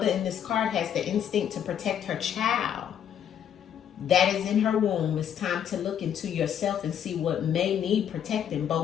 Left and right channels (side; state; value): right; quieter; 9.2 dB